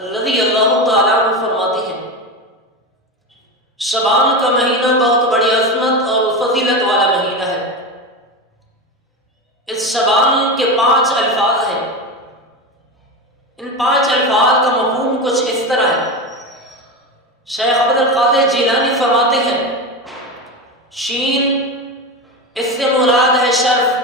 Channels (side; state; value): both; normal; correlation 0.20